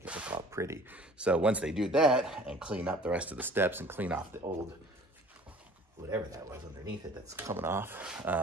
it look all pretty. So once they do that and clean up the rest of the steps and clean off the old, whatever that was underneath it that's coming off,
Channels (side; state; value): both; normal; correlation 0.49